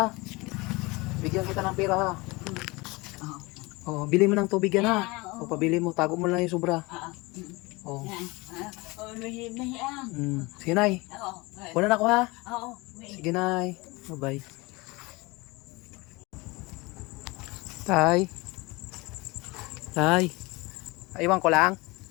Bigyan kita ng pera, ha? Oh, bili mo ng tubig yan, ha? O, pabili mo, tago mo lang yung sobra. Oh. Sige, Nay. Wala na ako, ha? Sige, Nay. Bye-bye. Tay. Tay. Iwan ko lang.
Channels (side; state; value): right; quieter; 24.1 dB